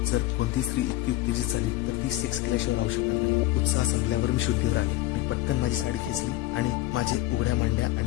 जर कोणती स्त्री इतकी उत्तेजित झाली तर ती सेक्स केल्याशिवाय राहू शकणार नाही. उत्साह संपल्यावर मी शुद्धीवर आले. मी पटकन माझी साडी खेचली आणि माझे उघड्या मांड्या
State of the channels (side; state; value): right; quieter; 16.6 dB